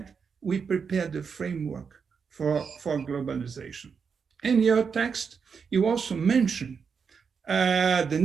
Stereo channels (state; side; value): quieter; left; 6.0 dB